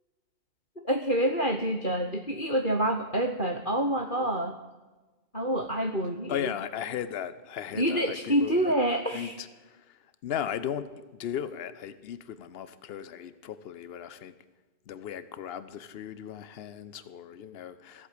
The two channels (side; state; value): right; late; 2.9 ms